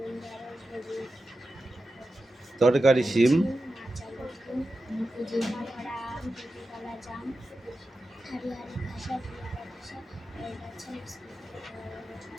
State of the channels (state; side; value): normal; both; correlation 0.92